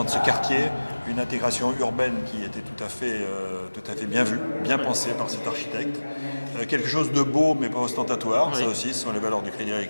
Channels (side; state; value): both; inverted; correlation -1.00